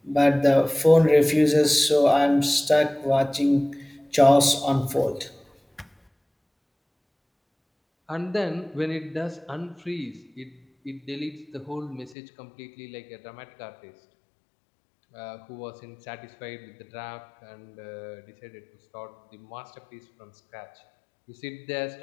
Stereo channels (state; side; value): drops out; right; at 12.2 s